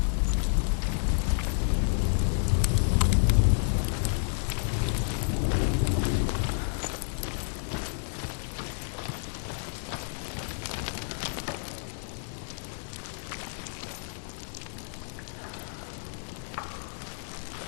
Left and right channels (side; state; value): right; silent; 58 dB below the other